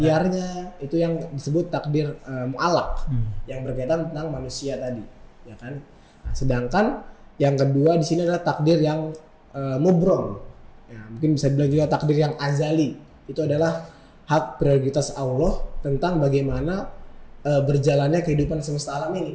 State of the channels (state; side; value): identical; both; correlation 1.00